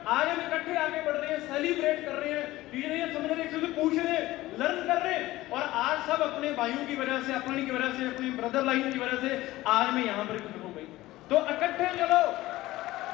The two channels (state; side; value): quieter; right; 17.3 dB